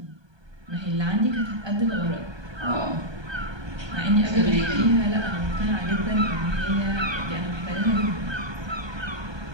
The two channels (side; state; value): left; late; 1.2 ms